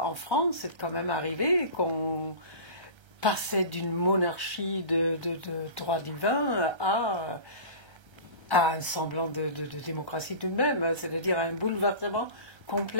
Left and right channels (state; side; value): late; left; 1.3 ms